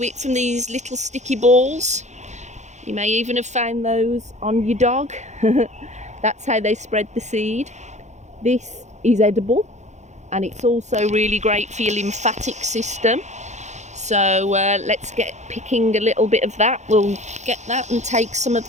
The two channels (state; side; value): late; left; 0.34 ms